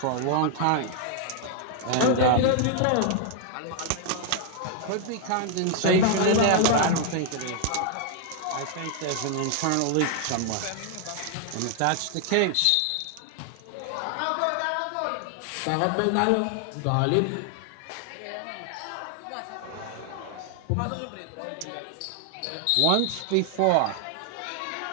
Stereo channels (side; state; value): both; different; correlation 0.00